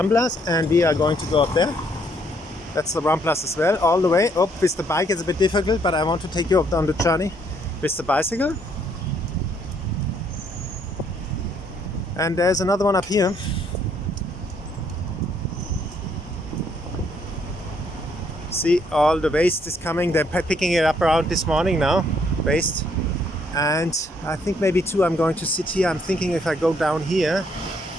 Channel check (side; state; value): both; normal; correlation 0.69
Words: and we are going to go up there. That's the Ramblas as well, all the way up. With the bike it's a bit difficult, but I want to take you up on the journey with the bicycle. And there's another one up here. See, all the waste is coming. They're picking it up around this morning now, waste. And I think maybe too I'm going to sit here. I'm thinking if I go down here,